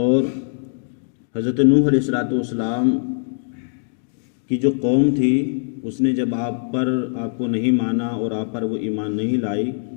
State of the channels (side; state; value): right; silent; digital silence